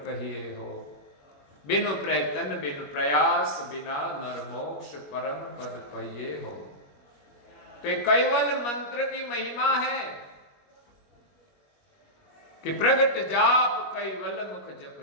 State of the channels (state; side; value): late; right; 21 ms